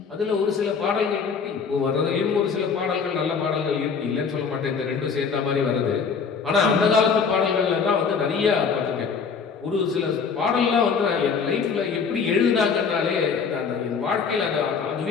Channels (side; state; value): right; quieter; 5.8 dB